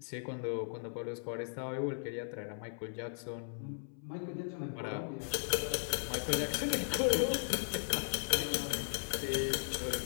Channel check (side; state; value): right; silent; 53 dB below the other